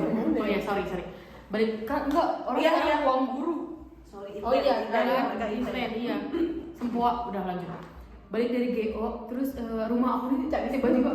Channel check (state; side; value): identical; both; correlation 1.00